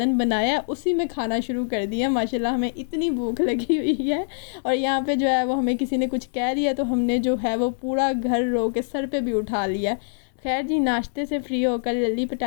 बनाया उसी में खाना शुरू कर दिया। माशाल्लाह हमें इतनी भूख लगी हुई है। और यहाँ पे जो है वो हमें किसी ने कुछ कह दिया तो हमने जो है वो पूरा घर रो के सर पे भी उठा लिया। खैर जी, नाश्ते से फ्री होकर लल्ली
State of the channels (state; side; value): silent; right; digital silence